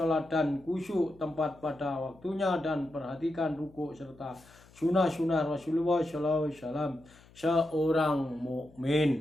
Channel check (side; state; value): left; noise; hum, 26 dB below the sound